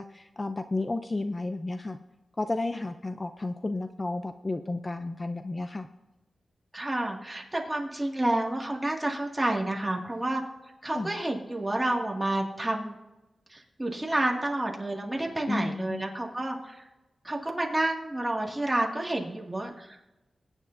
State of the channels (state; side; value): normal; both; correlation 0.97